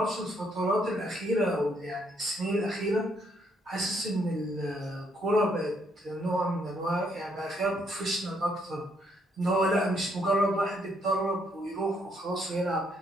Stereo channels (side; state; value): both; normal; correlation 0.72